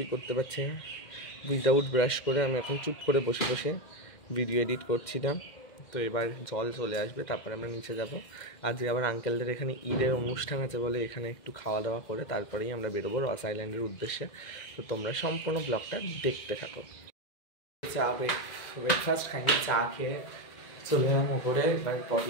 করতে পারছি না। উইদাউট ব্রাশ করে আমি এখন চুপ করে বসে বসে ভিডিও এডিট করছিলাম। তো এবার জল চলে আসবে, তারপরে আমরা নিচে যাব। আজকে আবার আঙ্কেলদের এখানে ঈদের অনুষ্ঠান আছে বলে এখানে একটু খাওয়া দাওয়া করে তারপরেই আমরা বেরোবো রস আইল্যান্ডের উদ্দেশ্যে। তো তোমরা সম্পূর্ণ ব্লগটা দেখতে থাকো। চা ব্রেকফাস্ট খাইনি, চা খেয়ে চলে এলাম ওপরে। এবার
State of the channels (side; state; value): right; late; 2.1 ms